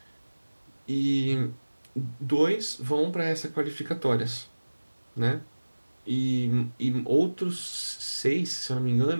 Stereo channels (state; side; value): inverted; both; correlation -1.00